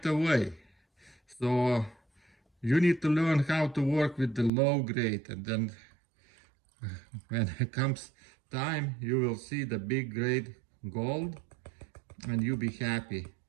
away. So you need to learn how to work with the low grade, and then when it comes time, you will see the big grade gold and you'll be happy.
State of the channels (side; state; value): left; drops out; at 4.5 s